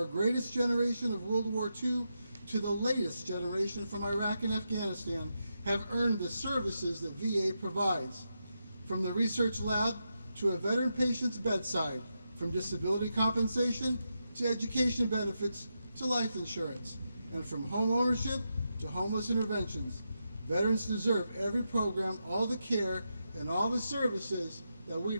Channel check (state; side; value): inverted; both; correlation -0.86